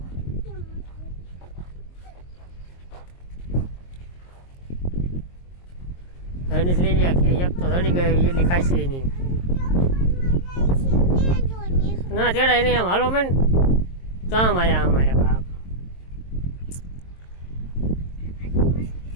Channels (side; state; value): right; late; 22 ms